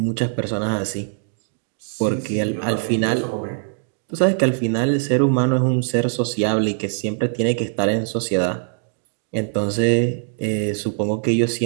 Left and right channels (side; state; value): left; silent; digital silence